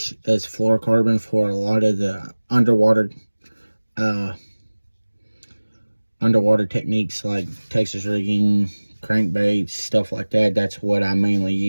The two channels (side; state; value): both; inverted; correlation -1.00